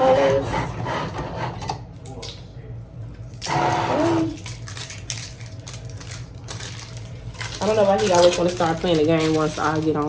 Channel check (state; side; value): identical; both; correlation 1.00